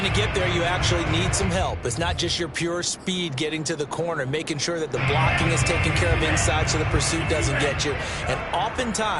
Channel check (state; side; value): identical; both; correlation 1.00